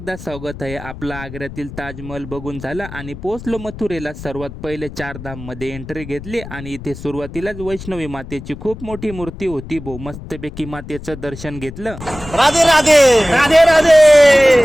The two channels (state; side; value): noise; left; rumble, 13 dB below the sound